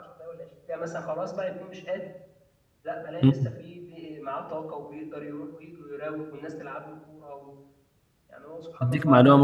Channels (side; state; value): both; identical; correlation 1.00